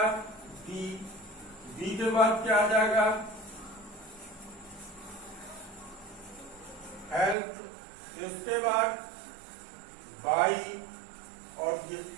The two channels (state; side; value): drops out; left; at 7.4 s